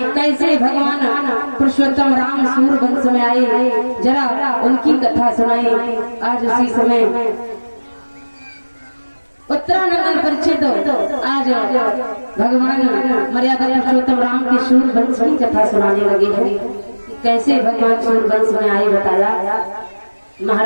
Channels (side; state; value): both; inverted; correlation -1.00